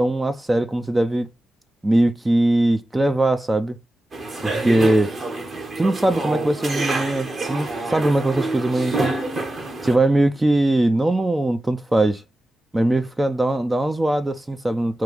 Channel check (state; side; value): normal; both; correlation 0.94